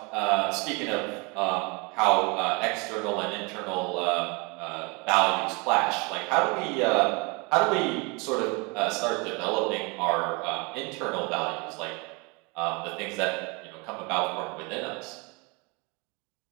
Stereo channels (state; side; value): quieter; left; 29.3 dB